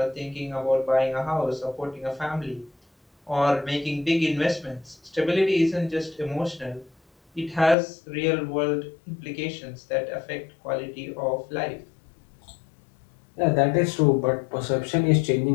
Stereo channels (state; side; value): drops out; right; at 7.8 s